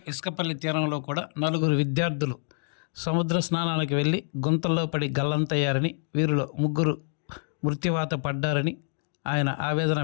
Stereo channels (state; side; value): silent; right; 60 dB below the other